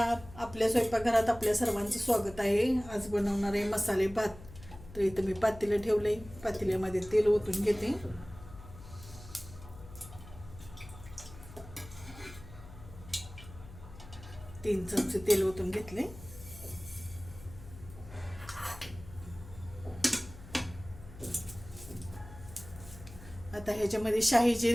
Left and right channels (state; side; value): noise; left; hum, 16 dB below the sound